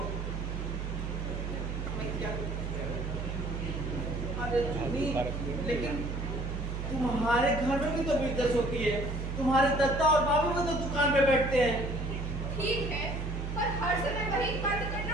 अरे जुनी, लेकिन तुम्हारे घर में भी तो बिजनेस होती है। तुम्हारे दत्ता और बाबू भी तो दुकान पे बैठते हैं। ठीक है, पर हर समय वही बात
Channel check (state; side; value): noise; right; hum, 4 dB below the sound